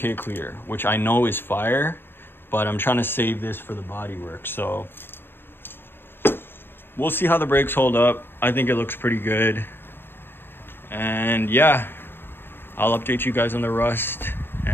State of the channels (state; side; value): late; right; 0.10 ms